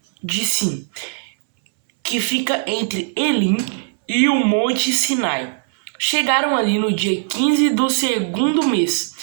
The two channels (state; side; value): silent; left; 66 dB below the other